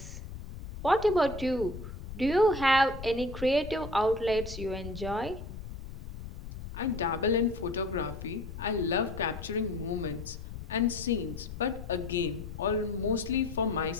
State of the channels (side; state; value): left; noise; rumble, 11 dB below the sound